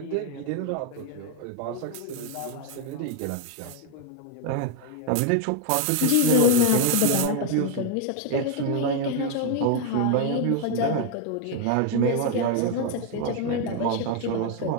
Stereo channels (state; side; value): different; both; correlation 0.01